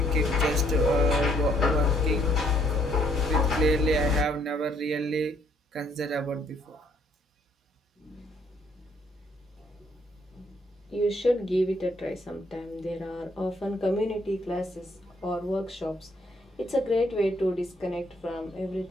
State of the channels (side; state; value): both; normal; correlation 0.67